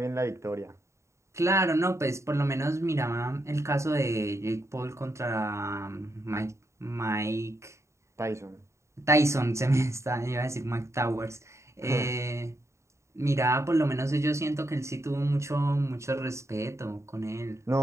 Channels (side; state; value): left; late; 0.14 ms